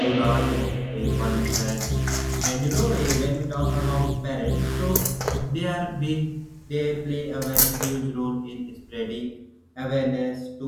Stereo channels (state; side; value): identical; both; correlation 1.00